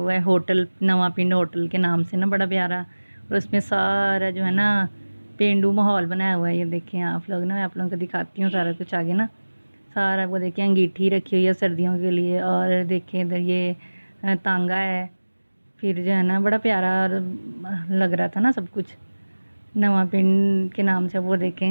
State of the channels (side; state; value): both; inverted; correlation -1.00